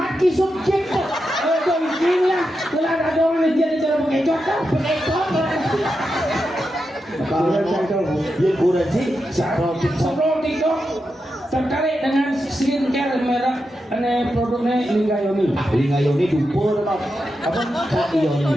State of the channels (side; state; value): both; normal; correlation 0.88